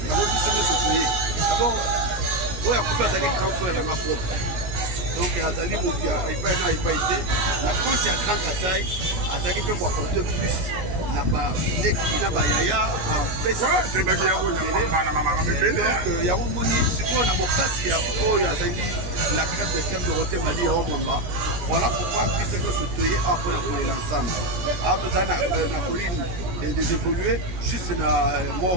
yango biso nyonso toye d'abord oyo akufi azali grand frère na propre donc azali moto ya epai na epai te na compte ya Grand Kasai azalaki mpe koaporte plus na baleki na bayaya apesa donc yango moni sikoyo na bokasi ya oyo azali la carte de thème Dorothée Madia ya Mwamba. Voilà pourquoi biso nyonso toye awa mpona kolela ensemble awa tozala na colline des évolués juste na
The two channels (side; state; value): left; late; 18 ms